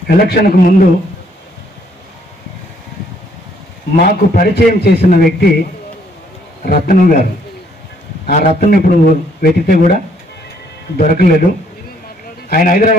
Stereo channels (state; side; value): normal; both; correlation 0.67